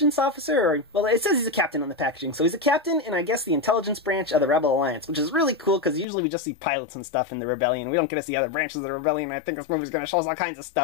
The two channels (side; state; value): right; drops out; at 6.1 s